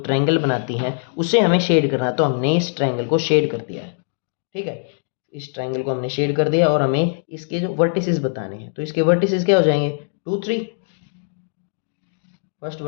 ट्रायंगल बनाती हैं उसे हमें शेड करना है। तो हमने इस ट्रायंगल को शेड कर दिया है। ठीक है, इस ट्रायंगल को हमने शेड कर दिया और हमें इसके जो वर्टिसेस बताने हैं। तो इसके वर्टिसेस क्या हो जाएंगे 2 3। फर्स्ट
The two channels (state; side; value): silent; right; digital silence